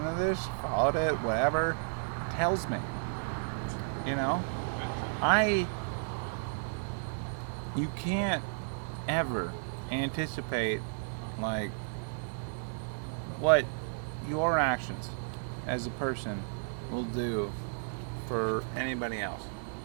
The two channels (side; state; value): left; silent; 56 dB below the other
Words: to this, followed it, whatever, tells me, you know, you can't ever anticipate, like, what your actions as a person will do for anybody else,